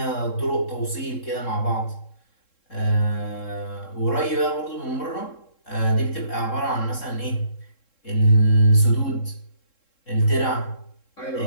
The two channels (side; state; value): right; late; 3.7 ms